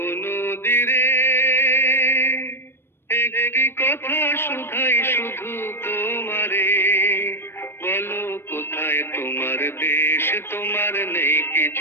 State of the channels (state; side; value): late; right; 0.11 ms